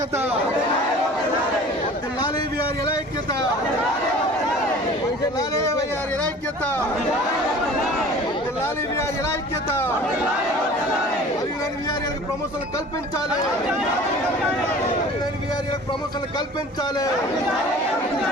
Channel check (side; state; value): both; normal; correlation 0.44